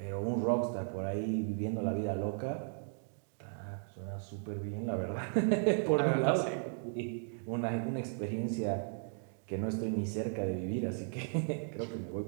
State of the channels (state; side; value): silent; left; 54 dB below the other